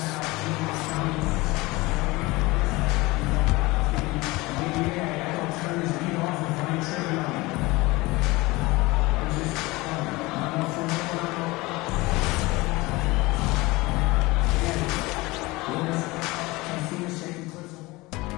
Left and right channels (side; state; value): right; quieter; 21.8 dB